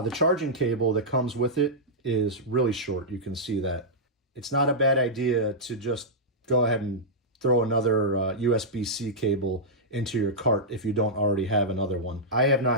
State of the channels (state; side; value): normal; both; correlation -0.10